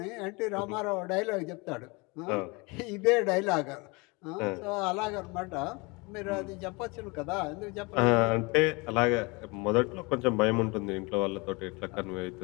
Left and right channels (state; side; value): quieter; right; 27.0 dB